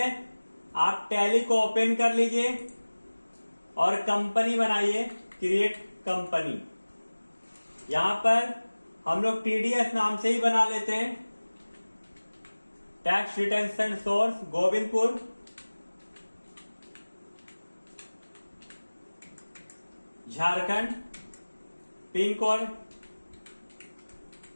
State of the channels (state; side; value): inverted; both; correlation -1.00